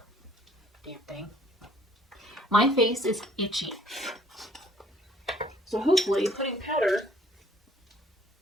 Damn thing. My face is itchy. So hopefully putting powder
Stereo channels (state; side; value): normal; both; correlation 0.59